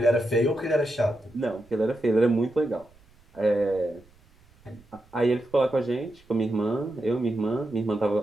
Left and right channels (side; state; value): right; noise; rumble, 29 dB below the sound